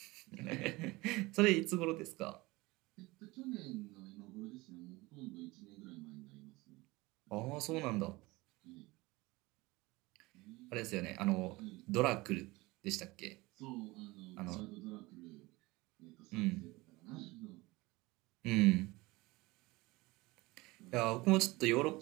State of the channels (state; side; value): quieter; left; 21.8 dB